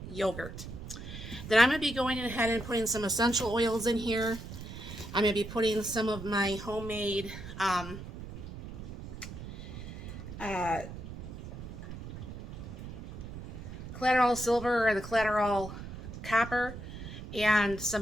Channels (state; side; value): noise; right; rumble, 10 dB below the sound